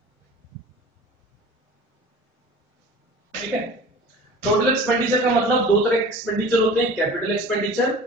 ठीक है, टोटल एक्सपेंडिचर का मतलब दो तरह के एक्सपेंडिचर होते हैं, capital expenditure,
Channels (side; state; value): both; normal; correlation 0.41